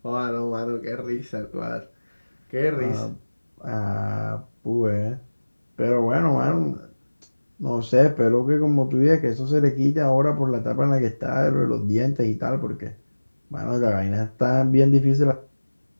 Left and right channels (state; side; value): inverted; both; correlation -1.00